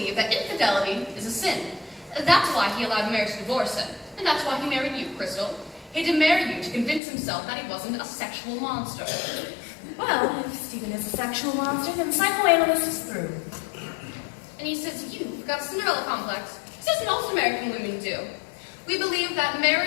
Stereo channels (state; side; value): drops out; right; at 7.0 s